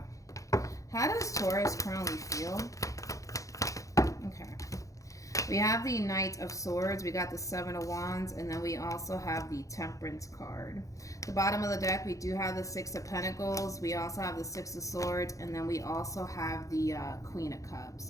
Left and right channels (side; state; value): right; late; 0.16 ms